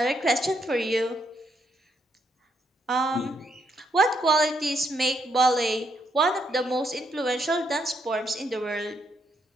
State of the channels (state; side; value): normal; both; correlation 0.76